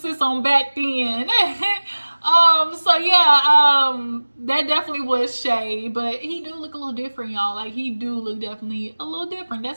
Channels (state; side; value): inverted; both; correlation -1.00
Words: on back then. So yeah, that definitely was shade, but he do look a little different, y'all. Like, he do look definitely a little different.